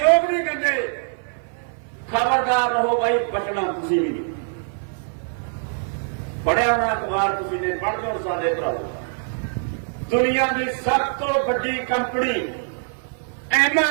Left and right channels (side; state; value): left; silent; 56 dB below the other